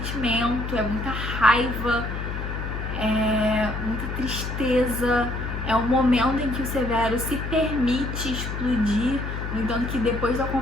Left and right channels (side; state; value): left; noise; hum, 5 dB below the sound